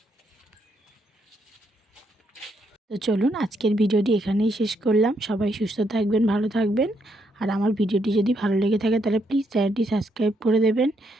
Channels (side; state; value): both; normal; correlation 0.76